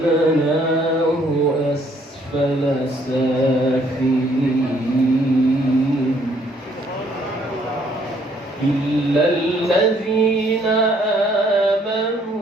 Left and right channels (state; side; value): normal; both; correlation 0.65